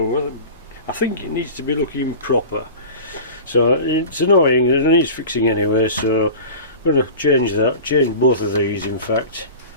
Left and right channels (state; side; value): inverted; both; correlation -0.35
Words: I think it needs to be looking proper. So it's annoying, it needs fixing anyway, so I'm going to change that, change both of these in fact.